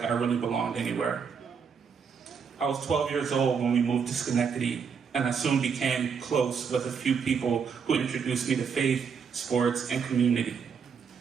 I really belonged anywhere. I was 12 years old when we moved to Schenectady, and I soon became close with a few people who introduced me to faith, sports, and community.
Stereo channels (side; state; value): left; quieter; 6.4 dB